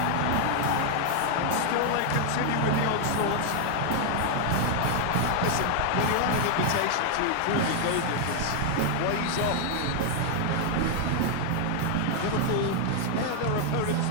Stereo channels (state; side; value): different; both; correlation 0.00